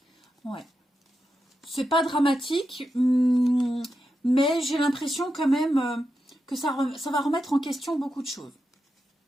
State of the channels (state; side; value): normal; both; correlation 0.88